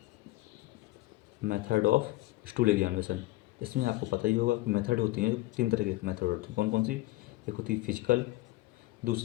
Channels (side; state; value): right; quieter; 19.1 dB